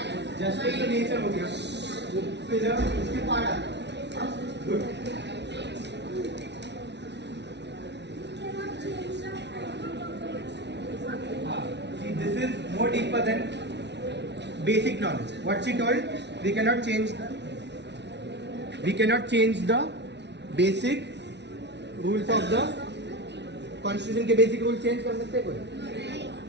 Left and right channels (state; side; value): late; left; 0.50 ms